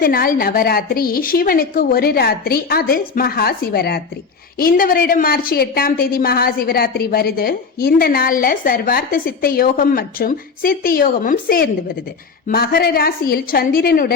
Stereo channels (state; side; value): quieter; right; 5.1 dB